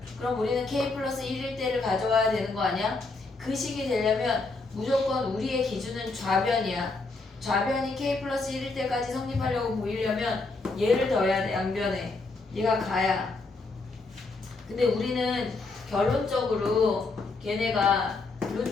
그럼 우리는 K 플러스 1일 때를 가져와야 되는 거 아니야? 그 식이 되려면 무조건 우리의 기준은 좌변이야. 좌변이 k 플러스 1일 때까지 성립하려고 보이려면 얘를 더해야 돼. 양변에 얘가 가야. 근데 우리는 결론적으로 걔네가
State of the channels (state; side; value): quieter; right; 3.6 dB